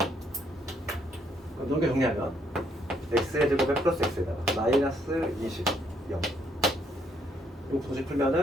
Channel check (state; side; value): normal; both; correlation 0.70